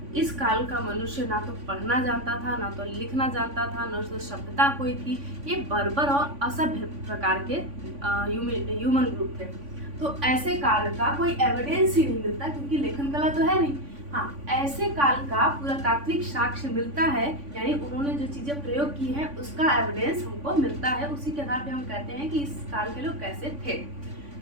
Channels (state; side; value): late; left; 3.5 ms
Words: इस काल का मनुष्य ना तो पढ़ना जानता था, ना तो लिखना जानता था, न तो सभ्यता कोई थी। ये बर्बर और असभ्य प्रकार के ह्यूमन ग्रुप थे। तो ऐसे काल का कोई एविडेंस ही नहीं मिलता, क्योंकि लेखन कला तो है नहीं। हाँ, ऐसे काल का पुरातात्विक साक्ष्य मिलता है, यानी उन्होंने जो चीज़ें प्रयोग की हैं उसका एविडेंस हमको मिलता है। उसी के आधार पे हम कहते हैं कि इस काल के लोग कैसे थे।